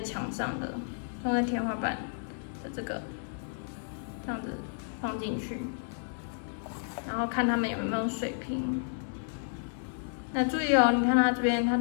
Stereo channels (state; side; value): silent; right; 57 dB below the other